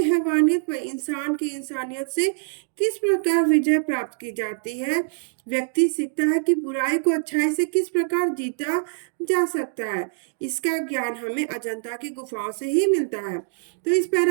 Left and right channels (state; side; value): silent; left; digital silence